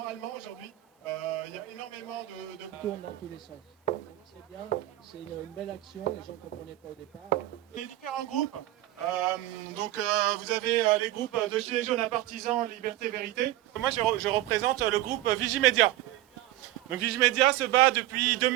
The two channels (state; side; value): quieter; left; 15.5 dB